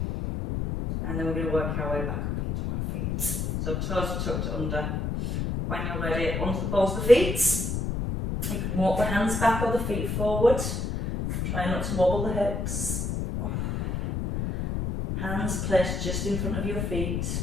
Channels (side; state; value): left; noise; rumble, 1 dB below the sound